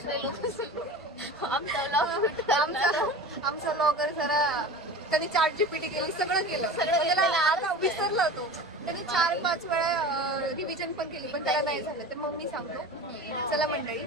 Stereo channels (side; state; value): both; normal; correlation 0.34